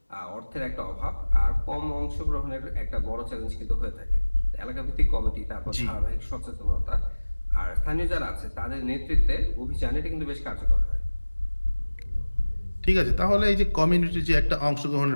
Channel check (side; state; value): both; inverted; correlation -1.00